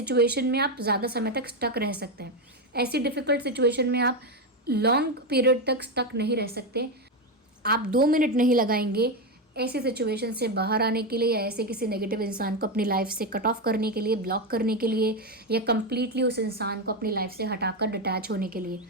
में आप ज़्यादा समय तक स्टक रह सकते हैं। ऐसी डिफ़िकल्ट सिचुएशन में आप लॉन्ग पीरियड तक स्टक नहीं रह सकते। आप 2 मिनट नहीं लगाएंगे ऐसी सिचुएशन से बाहर आने के लिए, या ऐसे किसी नेगेटिव इंसान को अपनी लाइफ से कट ऑफ करने के लिए, ब्लॉक करने के लिए, या कंप्लीटली उस इंसान को अपनी लाइफ से हटाकर डिटैच होने के लिए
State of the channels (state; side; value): normal; both; correlation 0.10